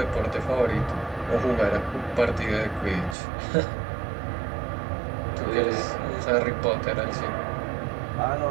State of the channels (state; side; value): drops out; left; at 3.2 s